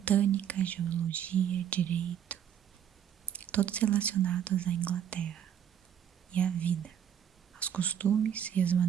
geologia, direito, todos relacionados à Inglaterra e à vida, aos costumes e às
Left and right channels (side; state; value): left; quieter; 9.3 dB